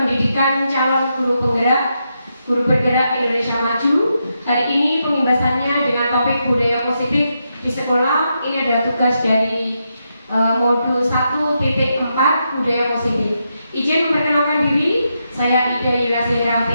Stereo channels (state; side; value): inverted; both; correlation -0.83